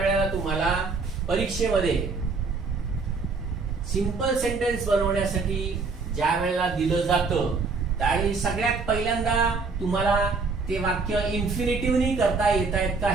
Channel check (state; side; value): quieter; left; 4.4 dB